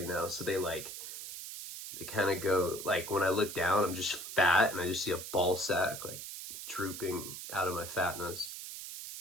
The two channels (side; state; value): right; noise; hiss, 9 dB below the sound